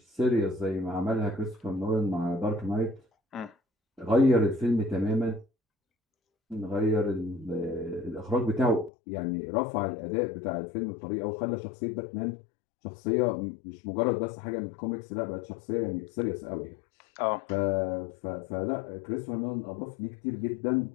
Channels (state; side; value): drops out; right; at 8.9 s